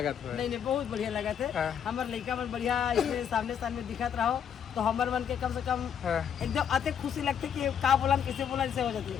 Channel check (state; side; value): quieter; right; 8.3 dB